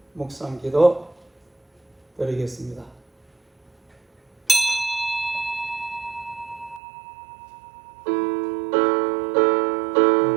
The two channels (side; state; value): left; drops out; at 6.8 s